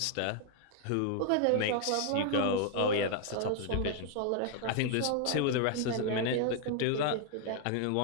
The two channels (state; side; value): different; both; correlation 0.00